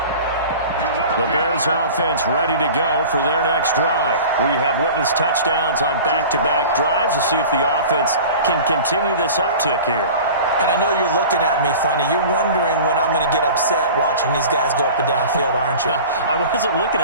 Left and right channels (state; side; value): inverted; both; correlation -0.38